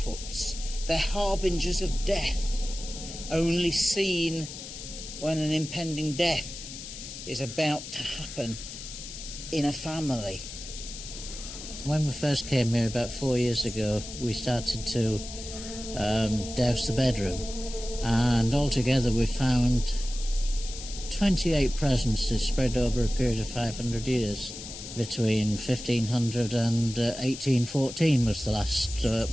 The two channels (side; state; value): left; noise; hiss, 11 dB below the sound